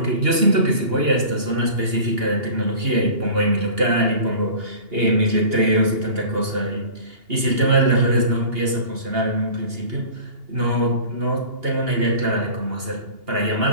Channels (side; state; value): left; late; 2.8 ms